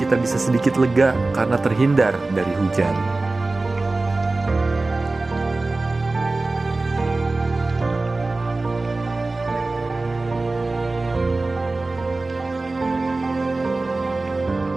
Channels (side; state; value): left; quieter; 3.2 dB